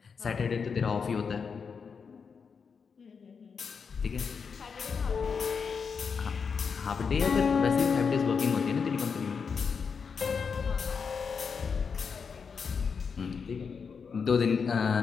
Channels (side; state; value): right; quieter; 5.8 dB